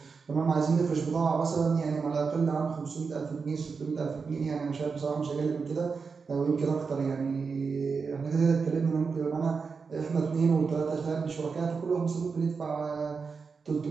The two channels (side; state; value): left; quieter; 5.1 dB